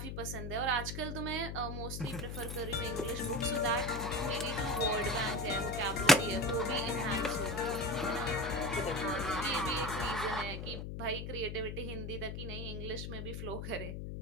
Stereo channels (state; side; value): noise; left; hum, 5 dB below the sound